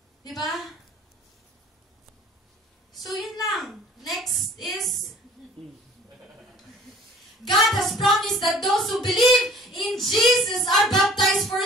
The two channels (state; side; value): normal; both; correlation 0.50